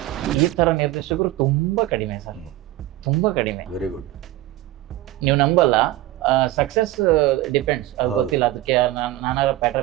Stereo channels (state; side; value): quieter; left; 16.0 dB